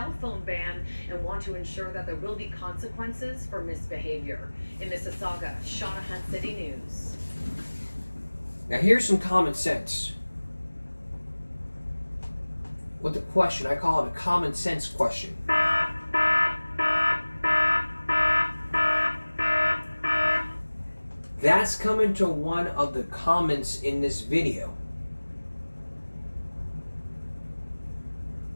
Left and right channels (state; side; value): inverted; both; correlation -1.00